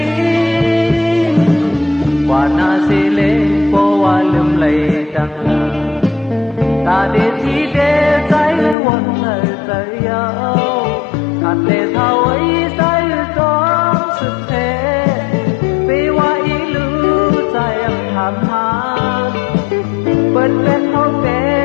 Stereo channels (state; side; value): drops out; right; at 8.8 s